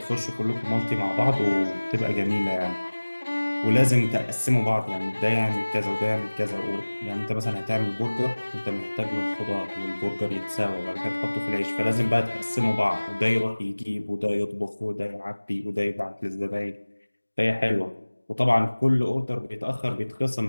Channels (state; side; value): inverted; both; correlation -1.00